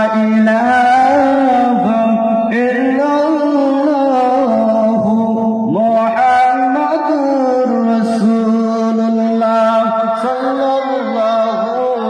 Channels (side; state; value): both; identical; correlation 1.00